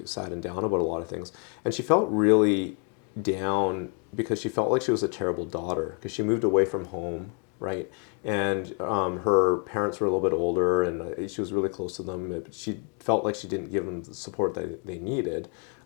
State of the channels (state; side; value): quieter; right; 39.6 dB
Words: sad and down about a lot of things. And she felt really down because she felt like she was a terrible daughter because she moved away from home, right? And her parents were a little bit older, and she was really close to them, but she felt like she didn't give them the support that they needed